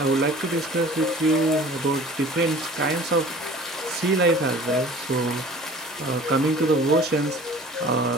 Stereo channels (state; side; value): normal; both; correlation 0.45